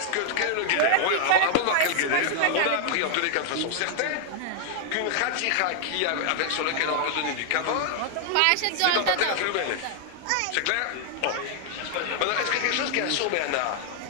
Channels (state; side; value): different; both; correlation 0.00